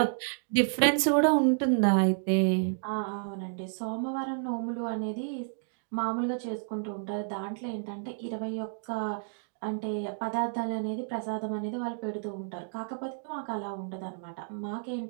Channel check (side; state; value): left; silent; digital silence